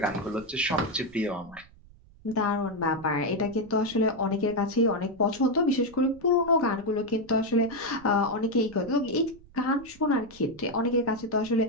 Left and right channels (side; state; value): right; noise; rumble, 24 dB below the sound